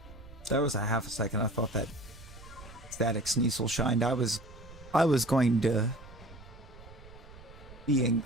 There was a half a second I thought that Static Sneasel shined. I was going to be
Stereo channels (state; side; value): noise; right; rumble, 18 dB below the sound